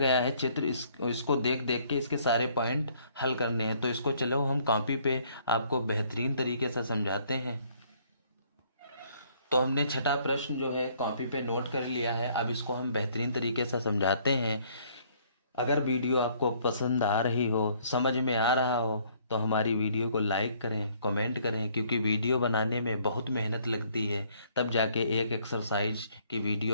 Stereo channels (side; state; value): both; inverted; correlation -0.63